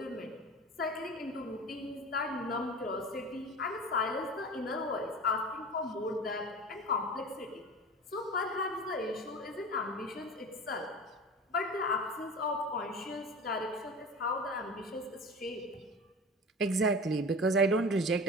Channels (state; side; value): normal; both; correlation 0.34